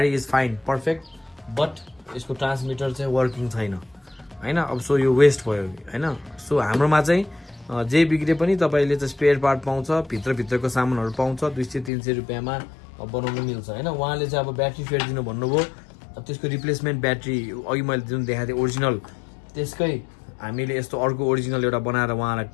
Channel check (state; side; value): drops out; right; at 11.9 s